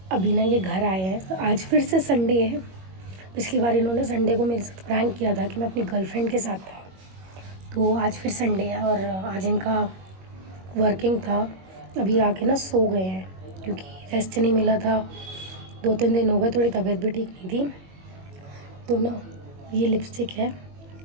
अभी ना ये घर आए हैं, आज फिर से संडे है। पिछली बार इन्होंने संडे को मेरे साथ प्रैंक किया था कि मैं अपनी गर्लफ्रेंड के साथ था, तो आज फिर संडे है और आज इनका वर्किंग था। अभी आके ना सो गए हैं क्योंकि रेस्ट नहीं मिला था। 2-3 दिन हो गए, थोड़ी तबीयत भी ठीक नहीं थी। तो ना ये लिपस्टिक है।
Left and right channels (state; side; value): late; left; 21 ms